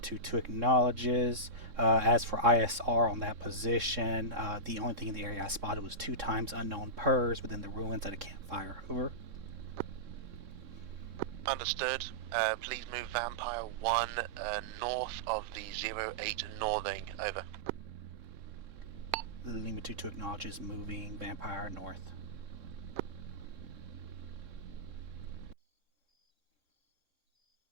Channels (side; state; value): left; late; 3.6 ms